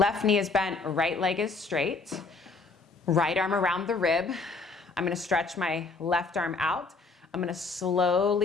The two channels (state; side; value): quieter; right; 4.0 dB